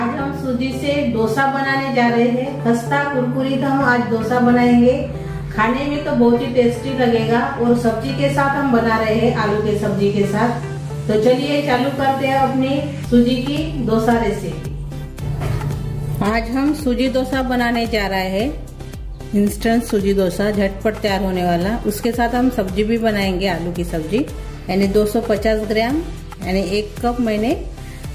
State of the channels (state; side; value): identical; both; correlation 1.00